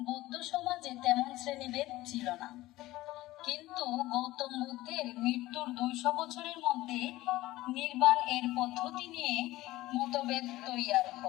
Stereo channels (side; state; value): right; quieter; 17.4 dB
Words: বৌদ্ধ সমাজে তেমন শ্রেণীভেদ ছিল না, কিন্তু গৌতম বুদ্ধের মৃত্যুর ২০০ বছরের মধ্যে নির্বাণ এর পদ্ধতি নিয়ে মতভেদ তৈয়ার